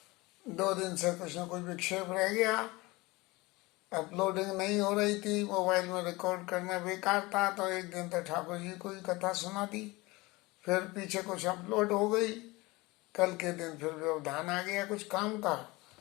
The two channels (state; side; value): quieter; right; 22.4 dB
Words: दो दिन से कुछ न कुछ विक्षेप रह गया, अपलोडिंग नहीं हो रही थी, मोबाइल में रिकॉर्ड करना बेकार था। तो एक दिन तो ठाकुर जी को ही कथा सुना दी, फिर पीछे कुछ अपलोड हो गई। कल के दिन फिर व्यवधान आ गया कुछ काम का,